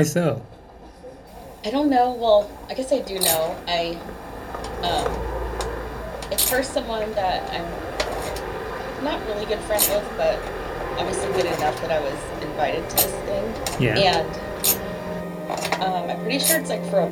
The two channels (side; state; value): both; identical; correlation 1.00